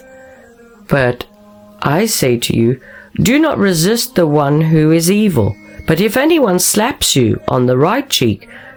But I say to you, do not resist the one who is evil. But if anyone slaps you on the right cheek,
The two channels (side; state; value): both; identical; correlation 1.00